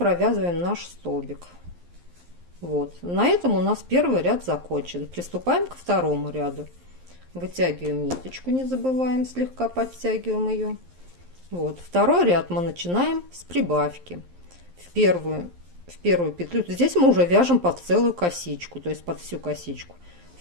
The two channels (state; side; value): late; left; 11 ms